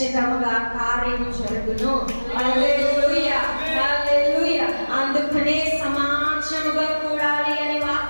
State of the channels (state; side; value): inverted; both; correlation -1.00